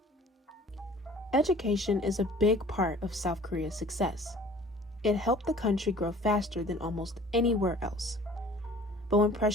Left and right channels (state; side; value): normal; both; correlation 0.49